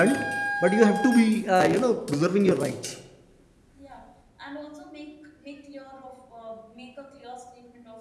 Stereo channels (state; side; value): identical; both; correlation 1.00